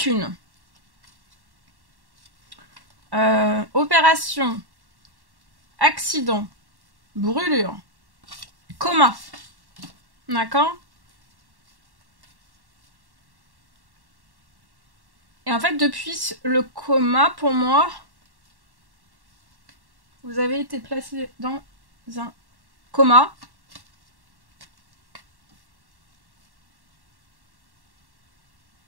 Opération, accident, brûlure, coma. D'accord? Et en fait, depuis le coma, pour moi, vous avez été placé dans un coma.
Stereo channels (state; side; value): late; left; 1.1 ms